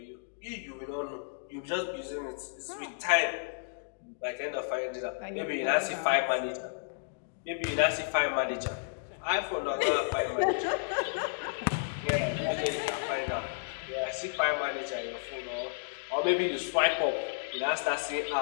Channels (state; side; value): silent; right; digital silence